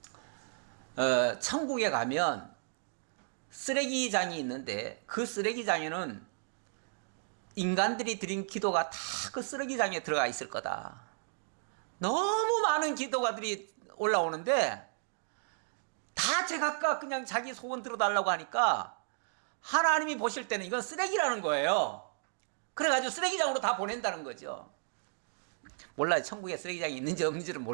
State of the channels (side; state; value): left; silent; digital silence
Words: 천국에 가면 쓰레기장이 있는데, 그 쓰레기장에는 인간들이 드린 기도가 다 그 쓰레기장에 들어가 있을 거다. 너무 많은 기도가들이 올라오는데 다 제각각 그냥 자기 소원 들어달라고 하니까 하나님이 보실 때는 이건 쓰레기라는 거예요. 그래가지고 쓰레기장으로 다 보낸다는 거죠. 몰라요. 천국에 쓰레기장이 있는지 없는지는